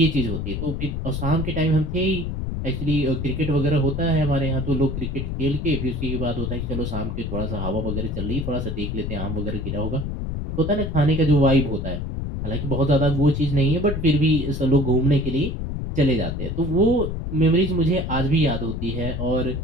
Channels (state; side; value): noise; left; rumble, 4 dB below the sound